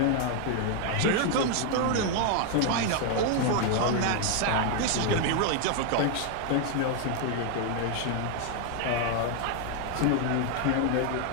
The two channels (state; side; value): different; both; correlation 0.00